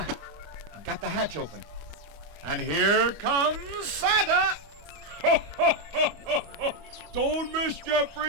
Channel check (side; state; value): left; late; 25 ms